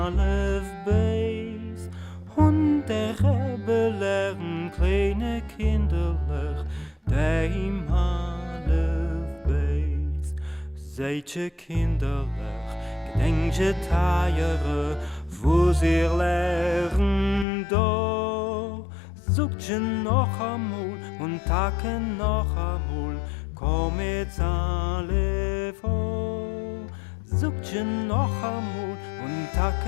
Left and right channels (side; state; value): right; drops out; at 17.4 s